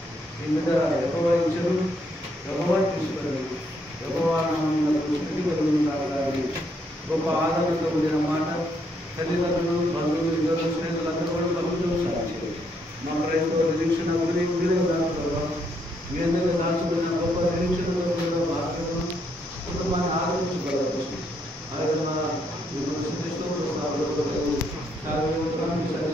ఈ బిడ్డ ఎక్కువ ఇచ్చారు, ఎక్కువ తీసుకున్నారు, ఎక్కువ స్థితి కలుగుతున్నారు. గొప్ప ఆదరణతో కూడిన మాట తల్లిదండ్రులు, బంధువులు, ఇద్దరు స్నేహితులందరూ కూడా కలుగుతున్నారు. మా క్రైస్తవ నిరీక్షణ మీరే దాంట్లో మీ అందరూ దాచుకున్న గొప్ప నిరీక్షణ భాగంలో కుటుంబాన్ని ఆదరించగలరు. ఆయన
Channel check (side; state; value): both; normal; correlation 0.74